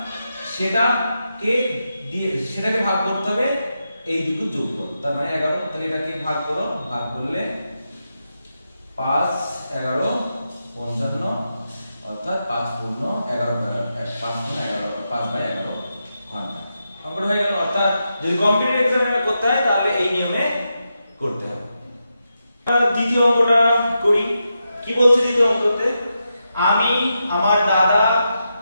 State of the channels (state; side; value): inverted; both; correlation -0.87